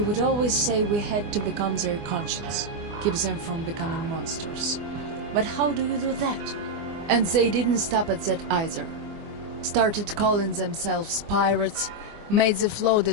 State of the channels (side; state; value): left; late; 24 ms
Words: would always say we had to become their conscience, keep them from becoming monsters. But how do you do that? And they didn't stop at that either. Started calling themselves pirates, made the